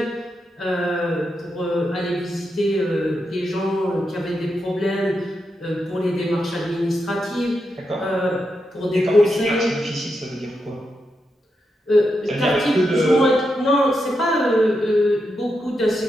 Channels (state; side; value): normal; both; correlation 0.85